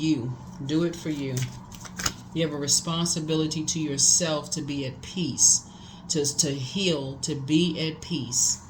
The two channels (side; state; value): both; identical; correlation 1.00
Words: Do it for you. You have a responsibility to yourself to be at peace, to heal, to be at peace.